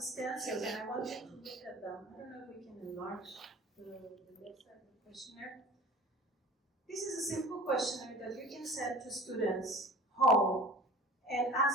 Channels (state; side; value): normal; both; correlation 0.41